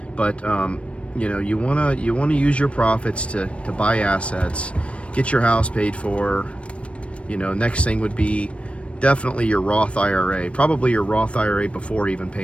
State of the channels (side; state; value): right; late; 0.061 ms